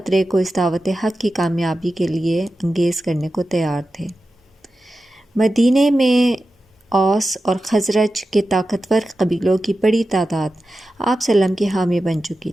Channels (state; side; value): normal; both; correlation 0.93